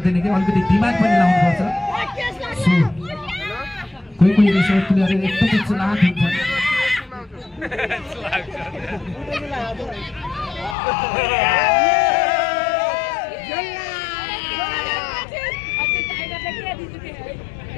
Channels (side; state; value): right; drops out; at 10.8 s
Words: कि अलिकति दिमाग पनि लाउनुपर्छ कोही कोही रेसर प्लेयर एकदमै चलाक हुन्छ